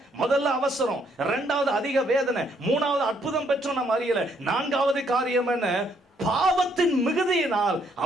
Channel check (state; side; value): normal; both; correlation 0.70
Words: முதல்ல அவசரம், 2வது அதிக வேதனை, 3வது அற்புதம் பெற்றோம் நம்ம அறியல, 4வது காரியம் என்ன, பாவத்தின் மிகுதியினால்